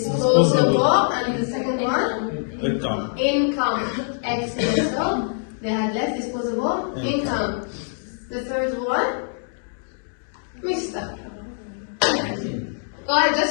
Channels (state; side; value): silent; right; digital silence